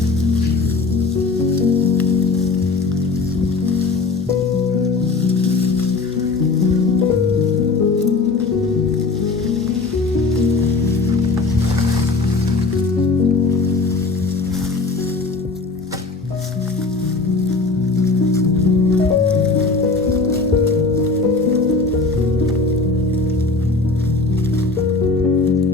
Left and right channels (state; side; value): quieter; right; 3.9 dB